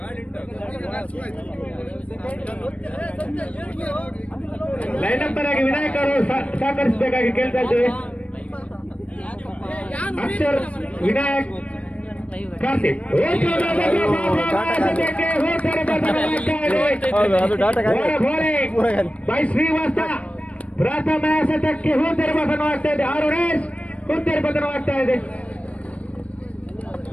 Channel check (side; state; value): right; late; 0.064 ms